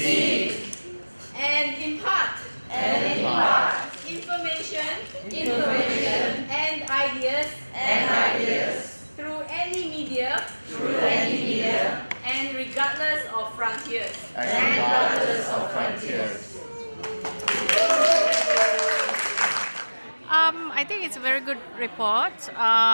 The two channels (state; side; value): inverted; both; correlation -1.00